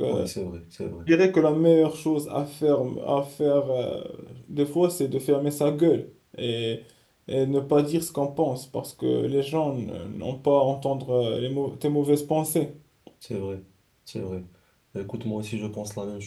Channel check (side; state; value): both; identical; correlation 1.00